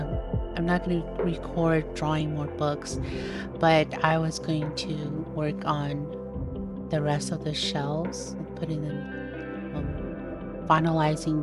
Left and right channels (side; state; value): both; identical; correlation 1.00